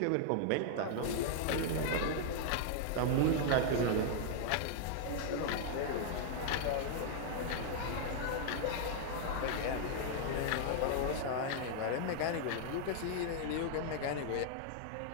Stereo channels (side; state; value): both; different; correlation -0.01